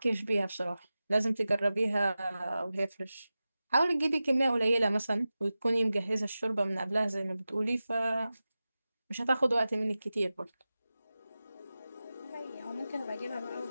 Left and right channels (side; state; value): both; inverted; correlation -0.95